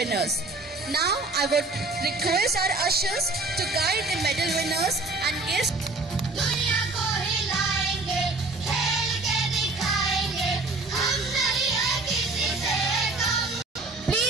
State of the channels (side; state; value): left; quieter; 3.2 dB